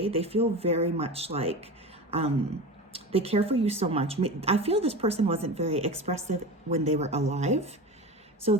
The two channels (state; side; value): normal; both; correlation 0.28